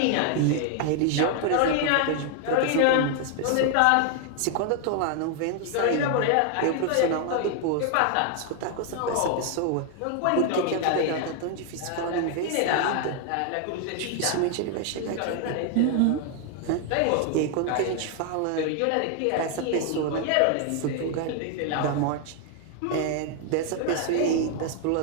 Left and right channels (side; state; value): both; different; correlation 0.00